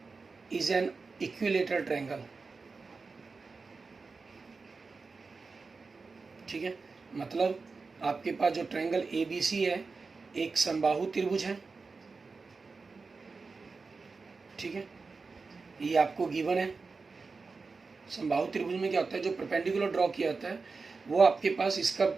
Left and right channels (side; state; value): left; quieter; 4.3 dB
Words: is an equilateral triangle, ठीक है। मतलब आपके पास जो ट्रायंगल ABC है एक समबाहु त्रिभुज है, ठीक है, ये आपको गिवन है। समबाहु त्रिभुज में क्या होता है, जो परपेंडिकुलर ड्रॉ किया जाता है वो आपके पास इसका